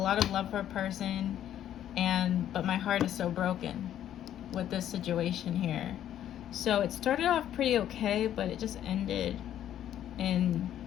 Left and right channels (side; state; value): right; quieter; 11.1 dB